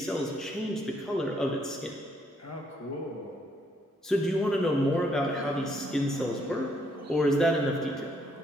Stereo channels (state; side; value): normal; both; correlation 0.71